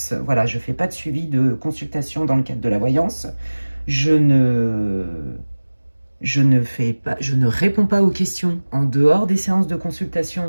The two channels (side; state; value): both; inverted; correlation -1.00